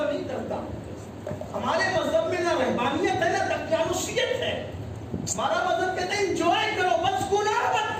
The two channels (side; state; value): both; identical; correlation 1.00